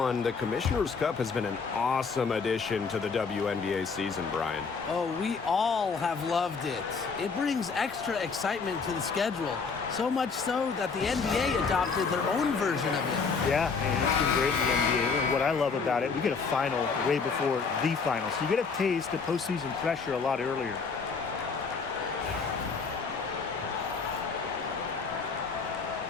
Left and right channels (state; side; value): quieter; right; 5.1 dB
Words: the Commissioner's Cup has been an awesome addition to the WNBA season, Brian. Oh, we all have loved it. It brings extra excitement to the schedule. So much so that the NBA adopted their own version of it. Yeah, and it's been great in the NBA. And what I love about it, we get a final way before the final. So you get a taste of postseason pressure a lot earlier.